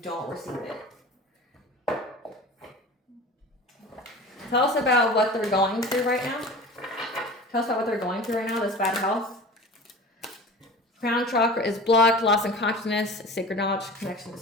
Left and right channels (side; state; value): both; normal; correlation 0.36